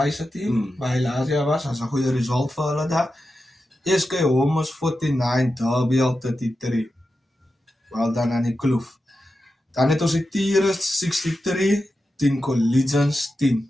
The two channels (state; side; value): normal; both; correlation 0.90